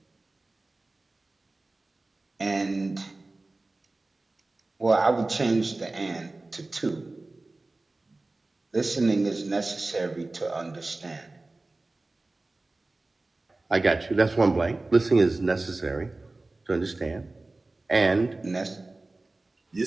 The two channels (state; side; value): quieter; left; 3.1 dB